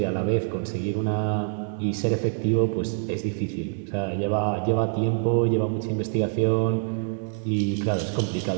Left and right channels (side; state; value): left; silent; 61 dB below the other